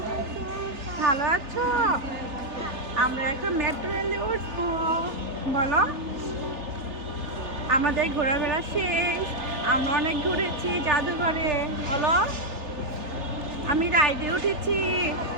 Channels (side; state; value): left; late; 3.3 ms